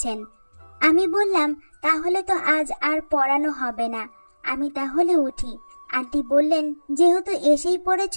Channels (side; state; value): both; inverted; correlation -1.00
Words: আমি বললাম, তাহলে তো আজ আর পড়ানো হবে না, আমি তাহলে উঠি। আন্টি বললেন, যেহেতু এসেই